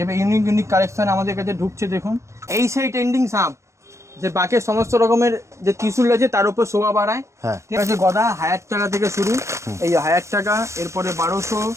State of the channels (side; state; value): left; late; 0.14 ms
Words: এবার ইউনিক ইউনিক কালেকশন আমাদের কাছে ঢুকছে দেখুন। এই সেই ট্রেন্ডিং সাপ যে বাকি সমস্ত রকমের যে ত্রিশুল আছে তার উপর শোভা বাড়ায়, ঠিক আছে। গদা 1000 টাকা থেকে শুরু, এই 1000 টাকা, এরপরে 1200,